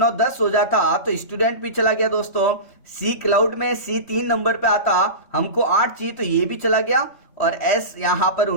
10 हो जाता, तो स्टूडेंट भी चला गया दोस्तों। C क्लाउड में C 3 नंबर पे आता, हमको 8 चाहिए तो ये भी चला गया। और S यहाँ पर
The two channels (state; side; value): late; right; 3.1 ms